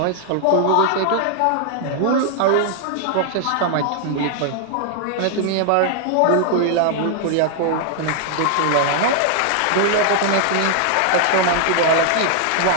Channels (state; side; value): different; both; correlation 0.00